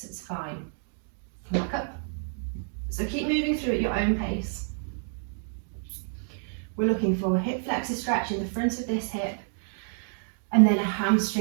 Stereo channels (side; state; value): left; silent; 56 dB below the other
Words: it's fine. Come back up. So keep moving through at your own pace. We're looking for a hip flexor stretch in the front of this hip, and then a